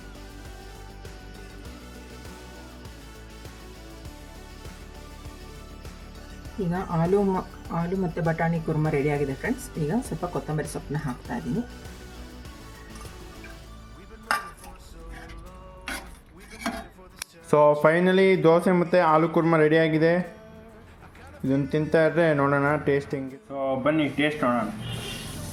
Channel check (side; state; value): both; identical; correlation 1.00